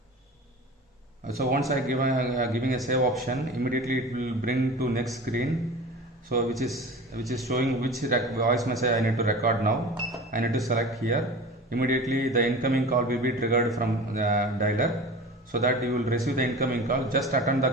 So once I giving a save option, immediately it will bring to next screen. So which is showing which voice message I need to record now. I need to select here. Immediately the incoming call will be triggered from the dialer, so that you will receive the incoming call. Just attend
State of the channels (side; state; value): both; normal; correlation 0.35